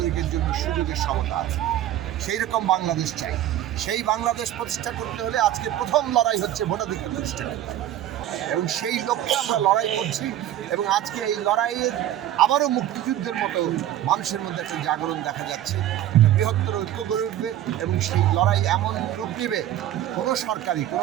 জন্য সুযোগের সমতা আছে। সেই রকম বাংলাদেশ চাই। সেই বাংলাদেশ প্রতিষ্ঠা করতে হলে আজকে প্রথম লড়াই হচ্ছে ভোটাধিকার প্রতিষ্ঠা করতে হবে। এবং সেই লক্ষ্যে আমরা লড়াই করছি এবং আজকে এই লড়াইয়ের আবারও মুক্তিযুদ্ধের মতো মানুষের মধ্যে একটা জাগরণ দেখা যাচ্ছে, একটা বৃহত্তর ঐক্য গড়ে উঠবে এবং সেই লড়াই এমন রূপ নেবে কোনো সরকারি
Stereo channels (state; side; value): quieter; left; 12.3 dB